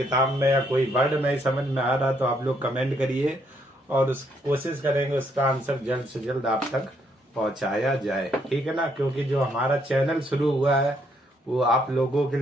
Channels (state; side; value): normal; both; correlation 0.72